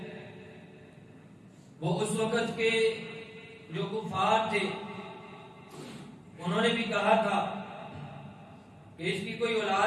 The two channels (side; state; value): both; identical; correlation 1.00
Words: وہ اس وقت کے جو کفار تھے انہوں نے بھی کہا تھا کہ اس کی کوئی